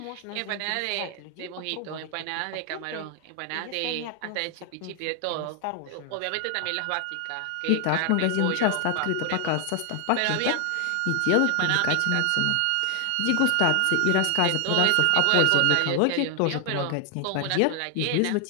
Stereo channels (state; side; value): different; both; correlation 0.00